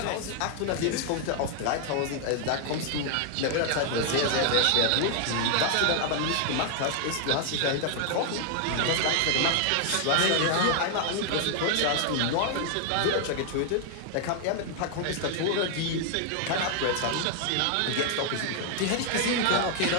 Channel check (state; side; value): different; both; correlation 0.00